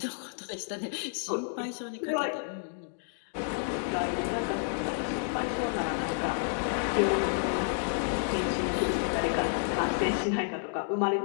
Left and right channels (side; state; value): right; silent; digital silence